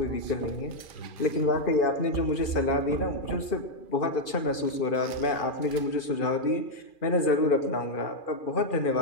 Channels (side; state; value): right; late; 2.4 ms